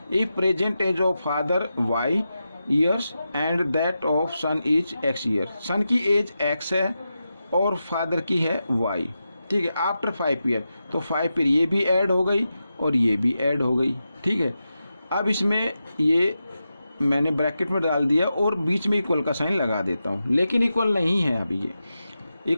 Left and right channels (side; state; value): both; inverted; correlation -0.90